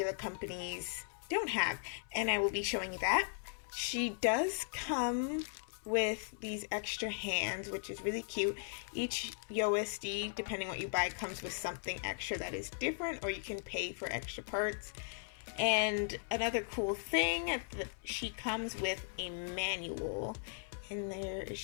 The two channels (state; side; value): silent; right; 53 dB below the other